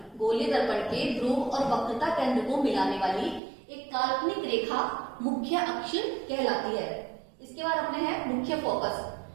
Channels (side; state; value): left; drops out; at 3.4 s